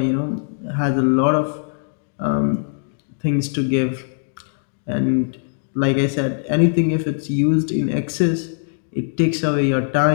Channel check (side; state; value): right; silent; digital silence